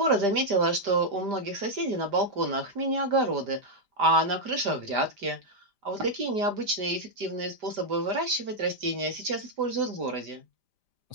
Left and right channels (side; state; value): left; late; 5.0 ms